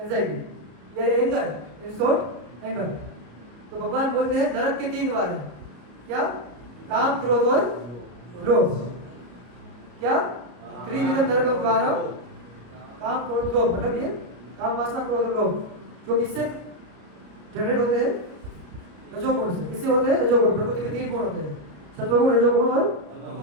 या एंगर, इन शॉर्ट एंगर। तो भगवान बोलते हैं नरक के 3 द्वार हैं, क्या, काम क्रोध और लोभ, क्या, त्रिविधम नरकम द्वारम, काम क्रोध लोभ, मतलब ये काम वासना क्रोध और लोभ जो किससे जनरेट होते हैं, रजोगुण से। किससे होते हैं, रजोगुण। प्रकृति के 3 गुण होते हैं, सत्वगुण, रजोगुण और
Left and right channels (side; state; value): left; late; 33 ms